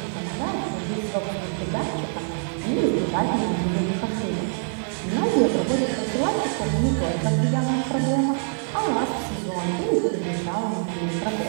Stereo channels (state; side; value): silent; left; digital silence